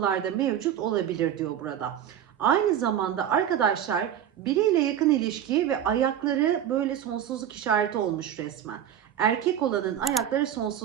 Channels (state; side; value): quieter; left; 10.1 dB